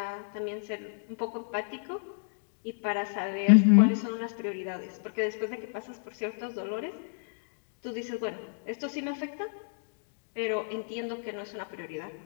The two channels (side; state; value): right; silent; digital silence